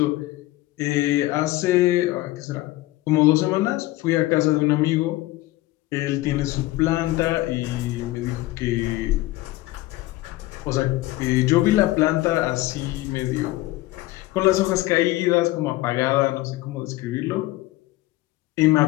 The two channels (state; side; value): quieter; right; 18.0 dB